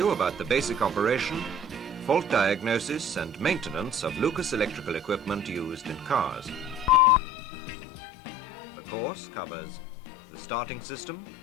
about the basic operation, fault diagnosis and maintenance of Lucas electrical equipment used in cars. The course covers the starting system,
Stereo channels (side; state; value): right; drops out; at 7.0 s